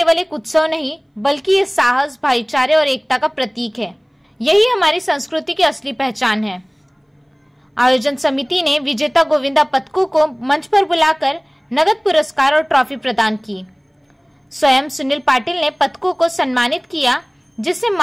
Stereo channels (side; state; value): both; identical; correlation 1.00